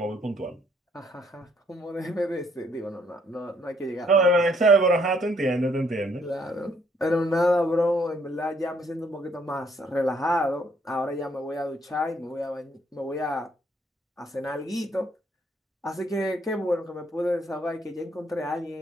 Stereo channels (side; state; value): both; normal; correlation 0.68